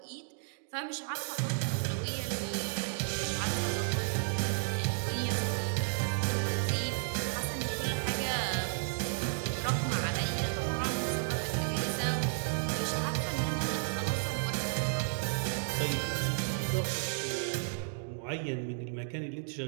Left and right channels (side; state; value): left; silent; digital silence